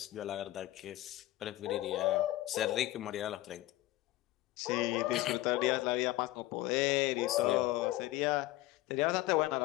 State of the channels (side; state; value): right; quieter; 16.9 dB